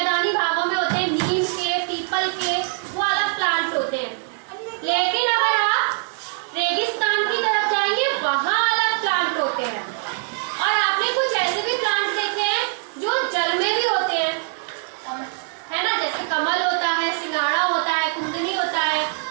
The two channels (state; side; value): silent; left; 56 dB below the other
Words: भागों में होते हैं, नीम के, पीपल के, वो अलग प्लांट होते हैं। लेकिन अगर आप रेगिस्तान की तरफ जाएंगे वहां अलग प्लांट होते हैं। और आपने कुछ ऐसे भी प्लांट देखे हैं जो जल में भी होते हैं, है ना, जैसे कमल होता है, सिंगाड़ा होता है, कुंदनी होता है,